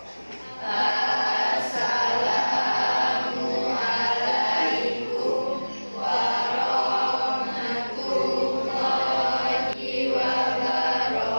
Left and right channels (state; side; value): inverted; both; correlation -1.00